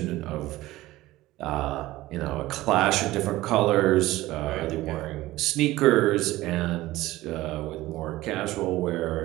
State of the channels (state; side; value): quieter; left; 17.3 dB